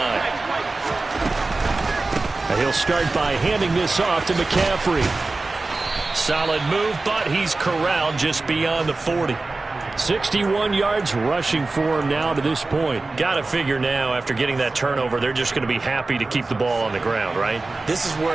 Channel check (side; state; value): left; quieter; 3.4 dB